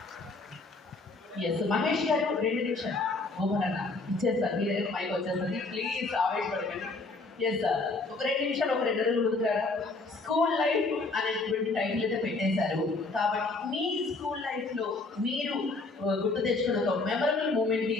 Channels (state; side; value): quieter; right; 3.5 dB